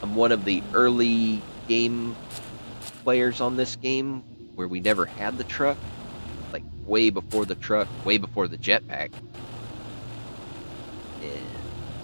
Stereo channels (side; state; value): both; inverted; correlation -1.00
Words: I'm one of the early game players on this game where we never had the truck. Like way before the truck, way before the jetpack. And